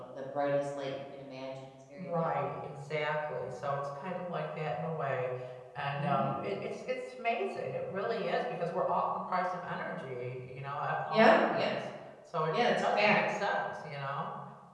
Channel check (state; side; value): identical; both; correlation 1.00